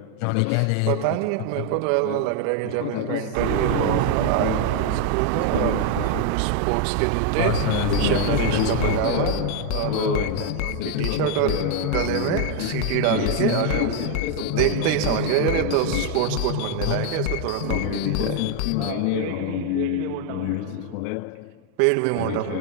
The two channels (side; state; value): both; different; correlation 0.01